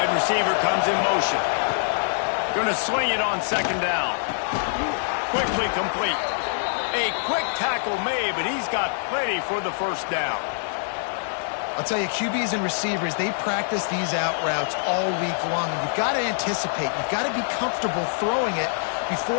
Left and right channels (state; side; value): silent; right; digital silence